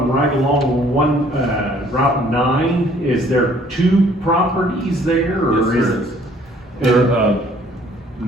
right along Route 9. Is there 2 properties there, or is it? There,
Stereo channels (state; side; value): normal; both; correlation 0.59